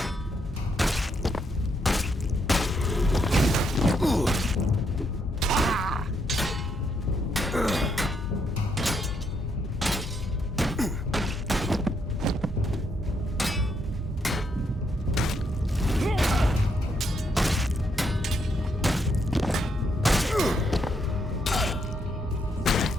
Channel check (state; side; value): normal; both; correlation 0.76